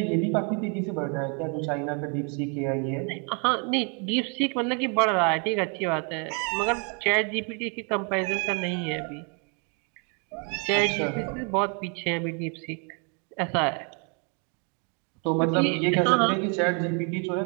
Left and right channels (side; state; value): left; quieter; 36.9 dB